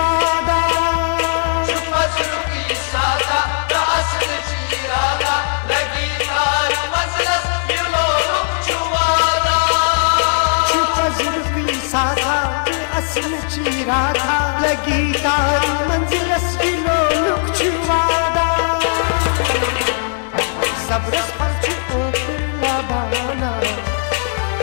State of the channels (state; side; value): silent; right; digital silence